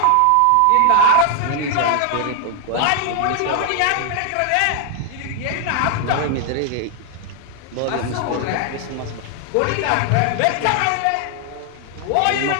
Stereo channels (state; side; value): different; both; correlation 0.00